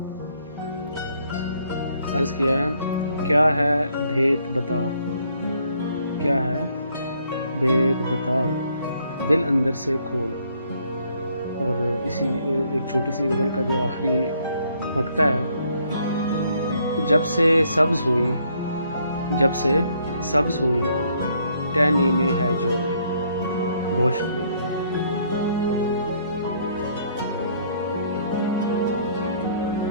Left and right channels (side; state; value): both; inverted; correlation -0.67